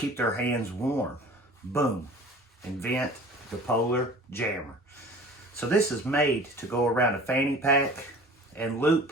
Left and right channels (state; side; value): normal; both; correlation 0.44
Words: their hands warm. Boom, invent the Polar Jammer. So this is made to go around a fanny pack and loop